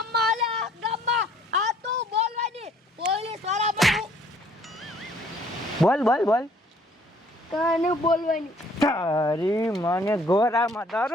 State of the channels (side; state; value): both; normal; correlation 0.60